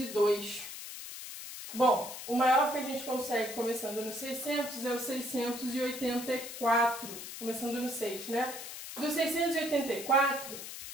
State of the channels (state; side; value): noise; left; hiss, 10 dB below the sound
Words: Bom, o maior que a gente consegue começando no 600 é o 684, começando no 6, né? Do 684,